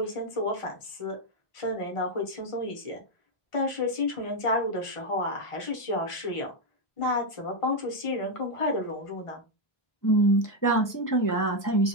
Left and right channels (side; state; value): right; late; 1.4 ms